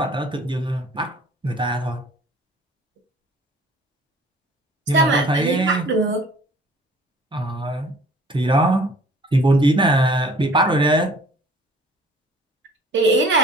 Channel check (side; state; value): both; normal; correlation 0.52